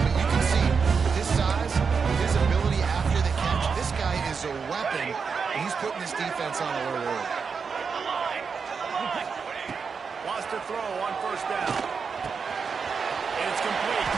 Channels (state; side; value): quieter; left; 5.6 dB